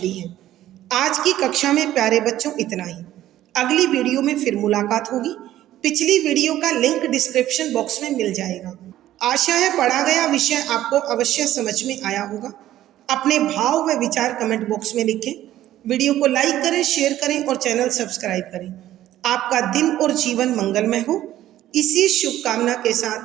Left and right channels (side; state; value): left; quieter; 13.5 dB